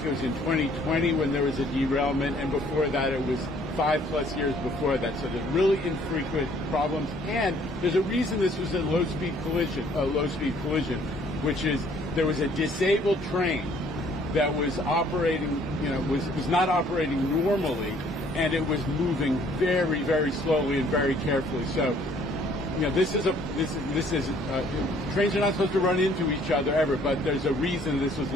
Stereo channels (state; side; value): normal; both; correlation 0.60